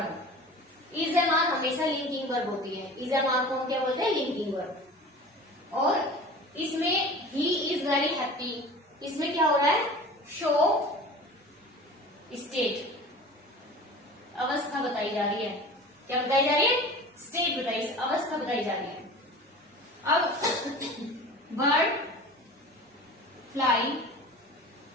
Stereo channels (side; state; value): both; normal; correlation 0.38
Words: is am are हमेशा लिंकिंग वर्ब होती है, इज एम आर को हम क्या बोलते हैं, लिंकिंग वर्ब। और इसमें ही इज वेरी हैप्पी, इसमें क्या हो रहा है, शो स्टेट, अवस्था बताई जा रही है। क्या बताई जा रही है, स्टेट बताई, अवस्था बताई जा रही है। अब bird fly